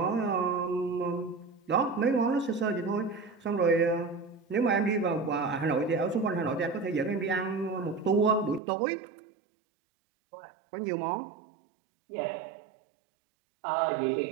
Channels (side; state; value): left; drops out; at 8.6 s